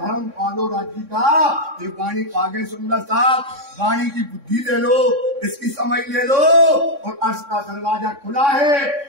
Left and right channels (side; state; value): left; late; 3.6 ms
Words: पालो राज्य का। ये वाणी आगे सुंदर साहब, वाणी की बुद्धि ले लो, इसकी समझ ले लो, और अर्श का दरवाजा खुला है।